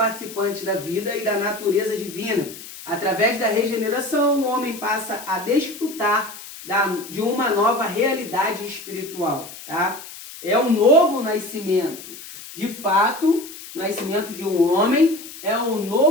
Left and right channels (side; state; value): left; noise; hiss, 14 dB below the sound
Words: da vida e da natureza divina. Através da regeneração, o homem passa a desfrutar de uma nova realidade espiritual, tá? É um novo nascimento. De fato, o nascimento de um homem é um